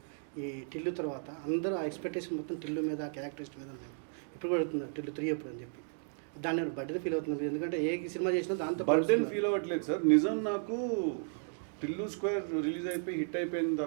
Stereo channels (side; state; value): left; silent; digital silence